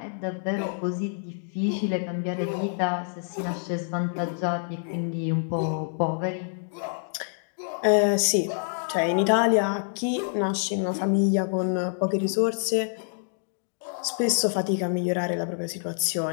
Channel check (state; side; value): silent; right; digital silence